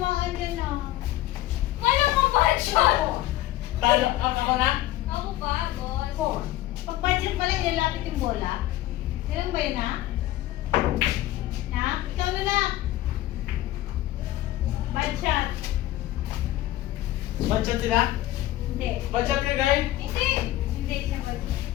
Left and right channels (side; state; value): right; quieter; 15.3 dB